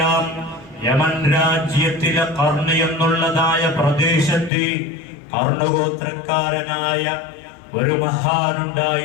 യമൻ രാജ്യത്തിലെ ഖർണ് എന്നുള്ളതായ പ്രദേശത്ത് ഖർണഗോത്രക്കാരനായ ഒരു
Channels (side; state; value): right; drops out; at 4.5 s